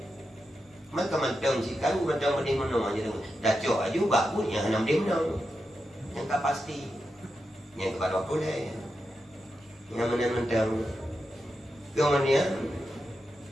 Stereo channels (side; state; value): both; normal; correlation 0.88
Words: maka mantang si kalu mantang benda mana aja dah cok aja bagus yang hana dia menang yang tak pasti yang kepada boleh yang mana mantang kemudian